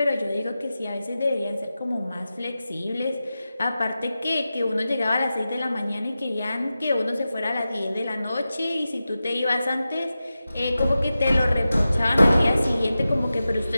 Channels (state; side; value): inverted; both; correlation -0.93